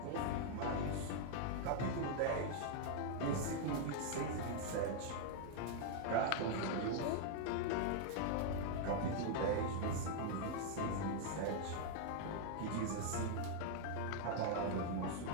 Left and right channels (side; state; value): both; different; correlation 0.00